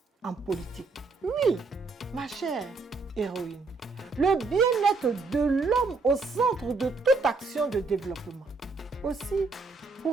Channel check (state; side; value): quieter; left; 4.0 dB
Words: en politique. Oui, ma chère héroïne, le bien-être de l'homme au centre de toute action de développement. Aussi,